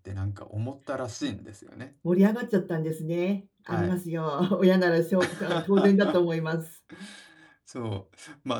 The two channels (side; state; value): both; identical; correlation 1.00